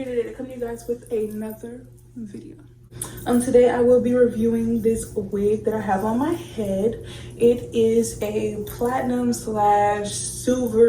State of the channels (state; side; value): identical; both; correlation 1.00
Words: today to come to you guys with another video. Today I will be reviewing this wig that I have on my head. It is a platinum slash